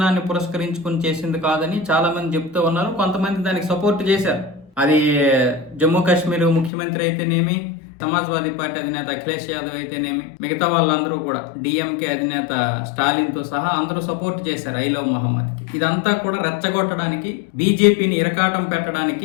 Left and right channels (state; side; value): drops out; right; at 6.7 s